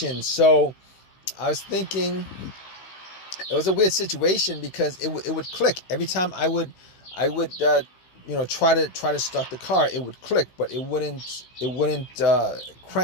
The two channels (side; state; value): right; late; 15 ms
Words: So I was thinking it was a weird situation, because it would click every time I would I would try to start the car. It would click, but it wouldn't